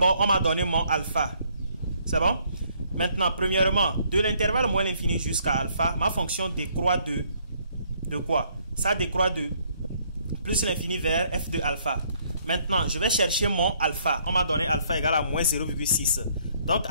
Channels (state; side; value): inverted; both; correlation -0.66